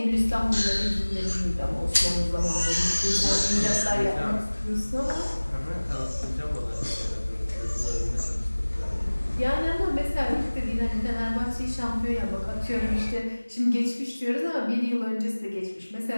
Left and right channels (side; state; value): both; inverted; correlation -1.00